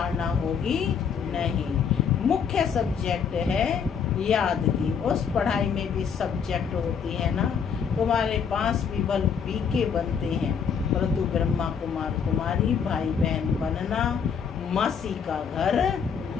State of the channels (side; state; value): right; quieter; 6.8 dB